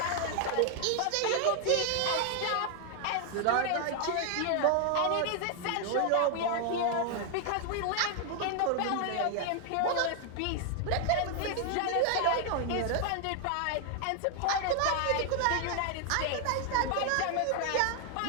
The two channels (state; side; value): different; both; correlation 0.00